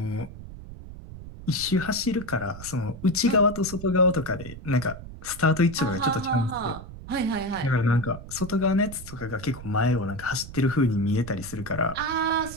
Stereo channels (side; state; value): right; noise; rumble, 13 dB below the sound